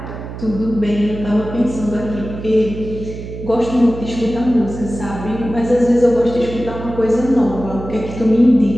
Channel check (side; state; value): right; noise; hum, 10 dB below the sound